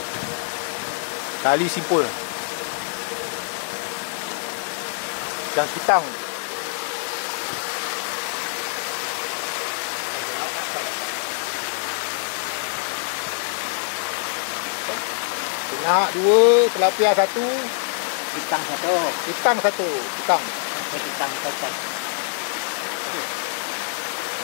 Tali simpul. Ikan kitang. Nak 2, tilapia 1, Kitang 1. kitang 1. Kitang. Kitang 1.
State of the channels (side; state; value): right; silent; 62 dB below the other